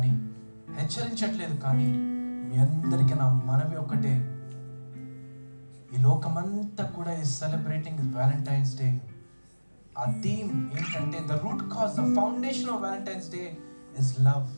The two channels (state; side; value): inverted; both; correlation -1.00